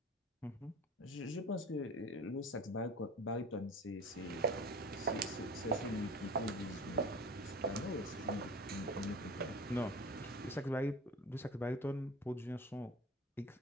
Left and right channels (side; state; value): both; normal; correlation 0.37